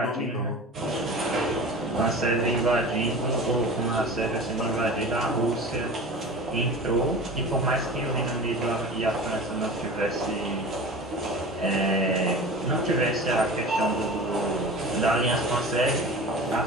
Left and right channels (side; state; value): both; normal; correlation 0.36